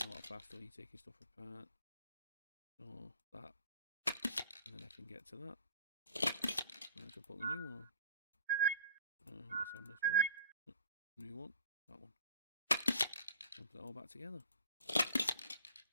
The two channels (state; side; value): inverted; both; correlation -0.51